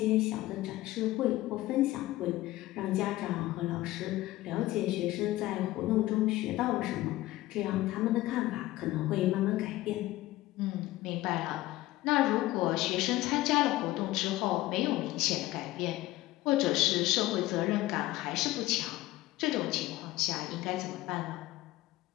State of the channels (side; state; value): right; quieter; 17.0 dB